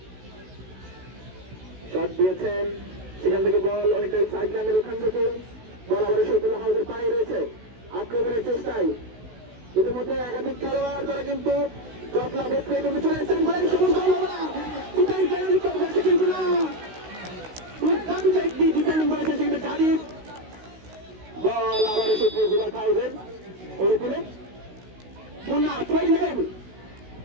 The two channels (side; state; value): left; late; 16 ms